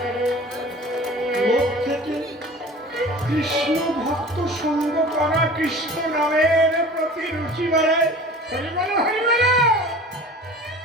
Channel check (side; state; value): both; normal; correlation 0.41